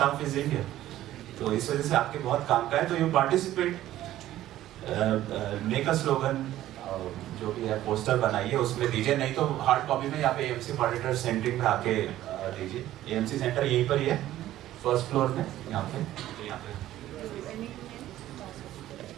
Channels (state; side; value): quieter; left; 13.8 dB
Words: is Indian, तो इस वजह से आपके बहुत काम का है। तो you participate, make a slogan, जो भी है पोस्टर बनाइए, उसमें दीजिए, नहीं तो हार्ड कॉपी में यहाँ पे एएमसी ऑडिटर सेंटरिंग में आके दीजिए। एएमसी सेंटर यहीं पर ही है, फर्स्ट फ्लोर में, यहाँ पे।